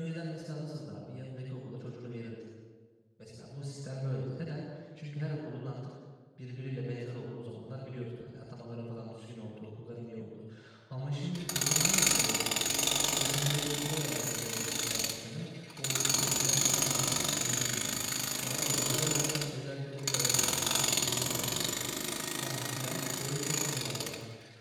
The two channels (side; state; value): both; identical; correlation 1.00